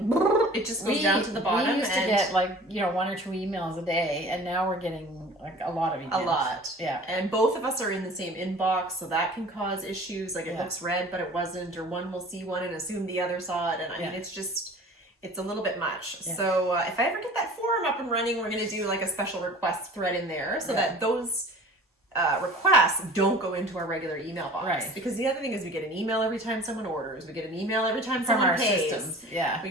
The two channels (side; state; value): both; normal; correlation 0.44